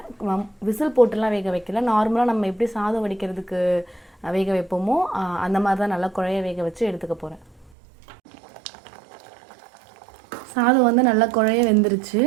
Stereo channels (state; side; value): drops out; left; at 7.8 s